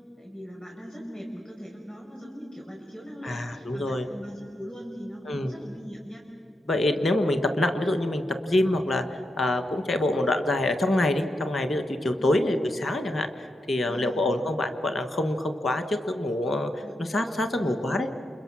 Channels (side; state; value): both; normal; correlation 0.85